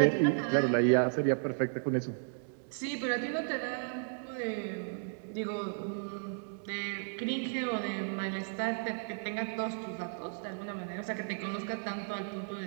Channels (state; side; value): silent; left; digital silence